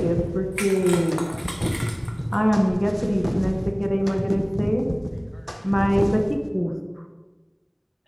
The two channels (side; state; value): both; identical; correlation 1.00